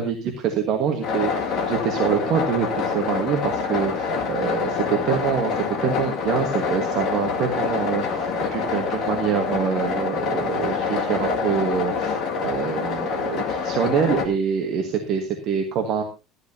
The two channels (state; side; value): normal; both; correlation 0.30